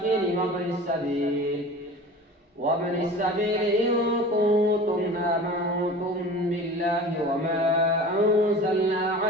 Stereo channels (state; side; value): normal; both; correlation 0.38